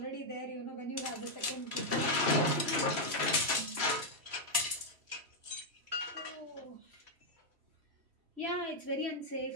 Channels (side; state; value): left; late; 3.1 ms